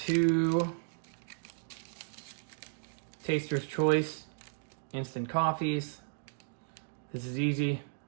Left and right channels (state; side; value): silent; left; digital silence